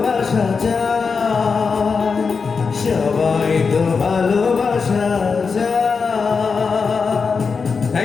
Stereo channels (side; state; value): right; quieter; 5.2 dB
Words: চায়, সবাই তো ভালোবাসা।